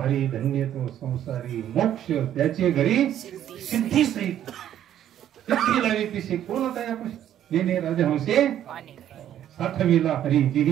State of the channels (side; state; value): left; quieter; 11.0 dB